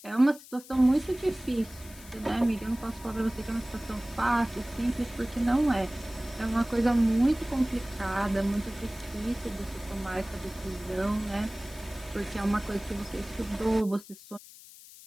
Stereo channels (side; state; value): left; noise; hiss, 19 dB below the sound